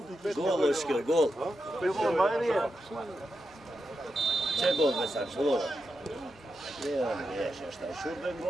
Gol, Oskar, gol. Če gol ve sad, šlo. Gdje on riješe šta, šurben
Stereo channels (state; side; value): normal; both; correlation 0.87